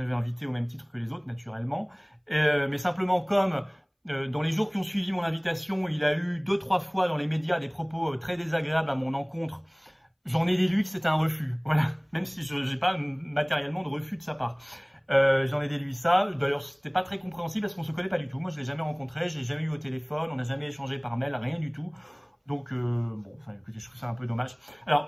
invité au même titre que les autres, naturellement. Mais simplement, comme dans les jours qui ont suivi mon invitation, il a eu 2-3 fois dans les médias des propos très désagréables à mon encontre, j'en ai déduit que c'était un refus. Voilà. Même si je n'ai pas matériellement de refus de sa part. J'en ai déduit ça. D'ailleurs, c'était pas très compréhensible parce qu'on se connaît pas du tout. Moi, je l'ai jamais rencontré, je l'ai jamais eu au téléphone, on n'a jamais échangé par mail, rien du tout. Donc, bon, enfin, écoutez, je trouve ça un peu dommage.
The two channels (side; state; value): both; identical; correlation 1.00